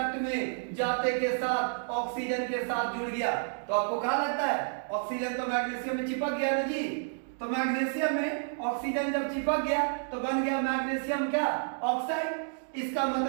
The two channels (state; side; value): silent; left; digital silence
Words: में जाते के साथ ऑक्सीजन के साथ जुड़ गया, तो आपको क्या लगता है? ऑक्सीजन तो मैग्नीशियम में चिपक गया ना जी। तो मैग्नीशियम में ऑक्सीजन जब चिपक गया तो बन गया मैग्नीशियम क्या? ऑक्साइड। इसका